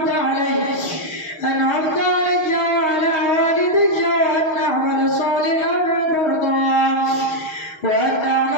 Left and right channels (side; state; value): right; late; 6.4 ms